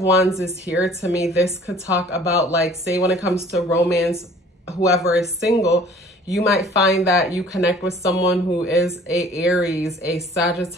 Wands is here, to me, this could talk about, like, say when it comes to romance, whoever is single, you might find that you connect with someone who is a Aries, a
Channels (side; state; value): both; normal; correlation 0.52